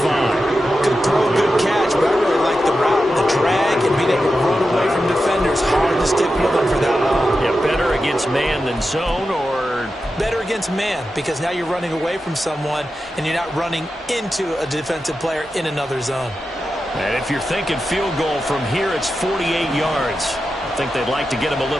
Good throw, good catch, but I really like the route, the drag, and being able to run away from defenders. Hard to stick with them for that long. Yeah, better against man than zone, or? Better against man, because now you're running away from someone, and you're not running into a defensive player in another zone. And if you're thinking field goal from here, it's 48 yards. I think they'd like to get him a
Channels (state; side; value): normal; both; correlation 0.91